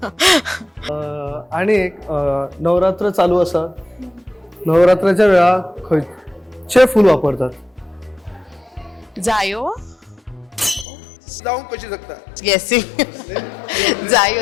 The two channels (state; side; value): drops out; right; at 10.9 s